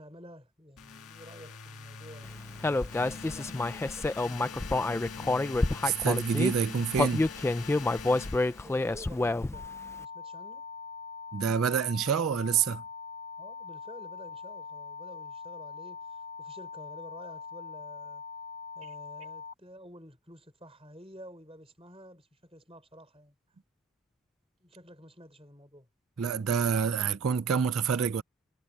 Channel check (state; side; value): normal; both; correlation 0.59